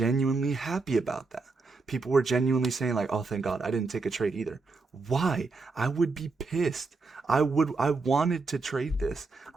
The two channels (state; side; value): quieter; left; 4.0 dB